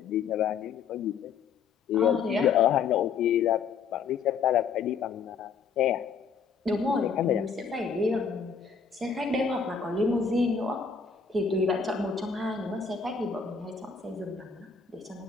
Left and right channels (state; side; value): quieter; right; 6.0 dB